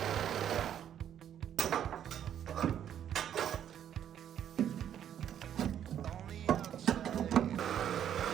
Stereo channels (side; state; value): left; quieter; 9.8 dB